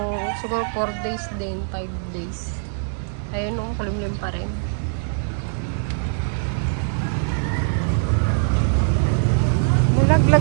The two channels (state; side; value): silent; left; digital silence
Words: siguro 4 days din, 5 days. Ayun, kalimlim pa rin.